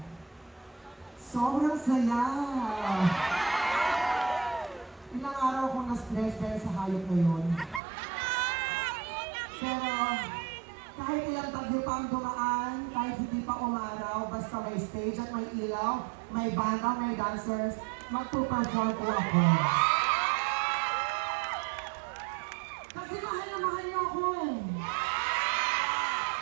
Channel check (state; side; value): drops out; left; at 7.8 s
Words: Sobrang saya! Ilang araw akong na-stress dahil sa hayop na yun. Pero, kahit ilang tagyo pa ang dumaan, kahit hindi pa umaraw, basta may stage at may ilaw, may banda, may dancers, magpuperform po ako. Kasi mahal na mahal niyo ako eh.